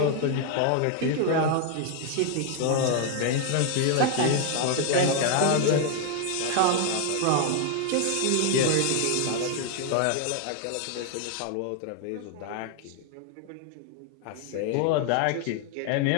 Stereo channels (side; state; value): both; different; correlation 0.00